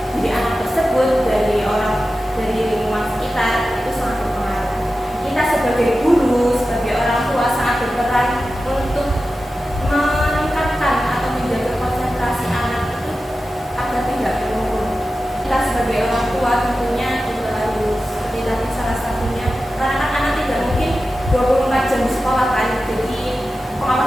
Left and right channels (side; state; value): both; normal; correlation 0.93